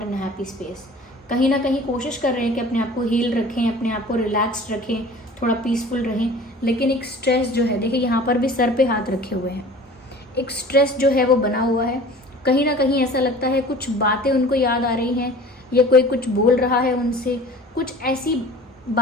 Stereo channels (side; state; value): both; normal; correlation 0.43